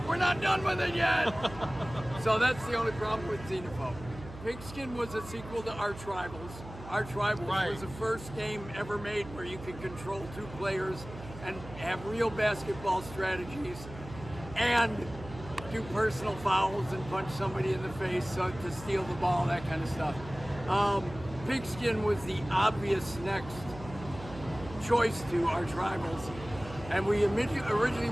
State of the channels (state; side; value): noise; right; hum, 14 dB below the sound